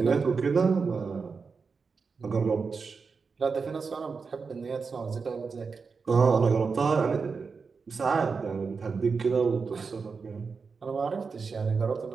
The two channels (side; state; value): left; quieter; 5.0 dB